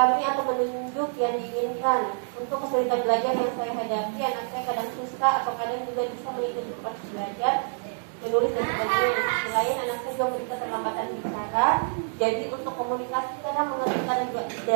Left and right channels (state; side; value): silent; left; 60 dB below the other